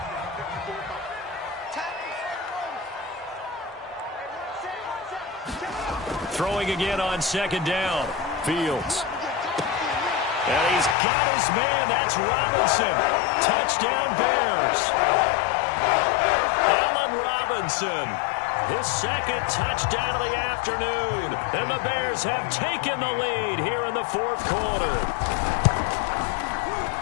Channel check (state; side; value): drops out; right; at 11.0 s